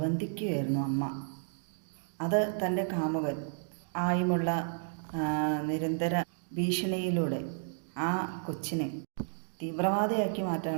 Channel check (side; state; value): left; silent; digital silence